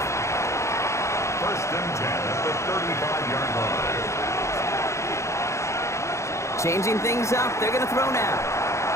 First and 10 at the 35-yard line. Changing things up, they're going to throw now.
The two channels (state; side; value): late; right; 0.14 ms